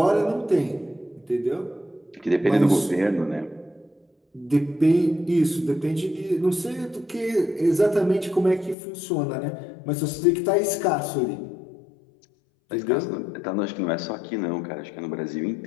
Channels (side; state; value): right; drops out; at 8.8 s